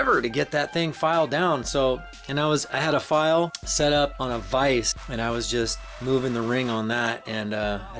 to get that thing filed down. So, and I had a file set up on a vise, and I was just moving the ring on that. And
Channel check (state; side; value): identical; both; correlation 1.00